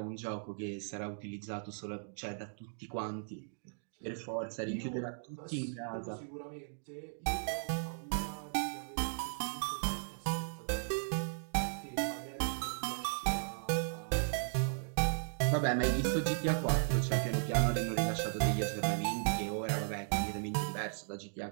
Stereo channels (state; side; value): silent; left; digital silence